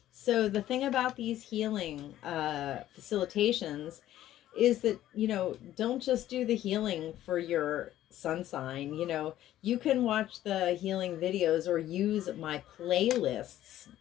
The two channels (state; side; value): quieter; right; 13.1 dB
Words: So the thing about these healing facilitations is that, you know, don't just do the healing for your sun sign. You know, you can watch the healing videos or use my playlists,